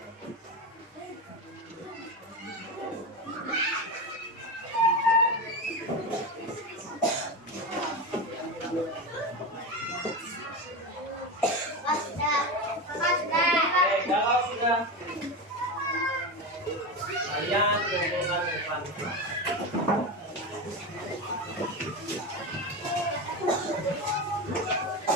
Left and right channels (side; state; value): both; normal; correlation 0.20